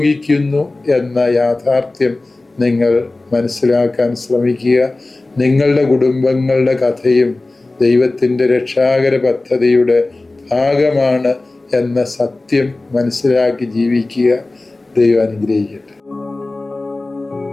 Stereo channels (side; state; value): right; quieter; 3.1 dB